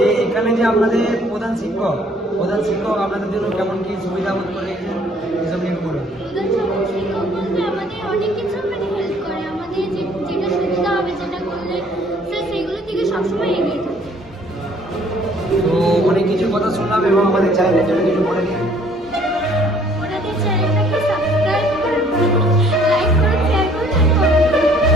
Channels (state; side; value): normal; both; correlation 0.59